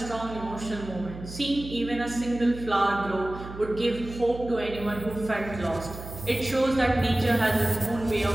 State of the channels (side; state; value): right; noise; hum, 12 dB below the sound